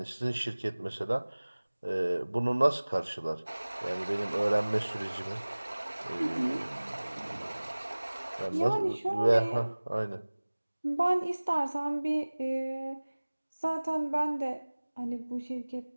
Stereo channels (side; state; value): both; inverted; correlation -1.00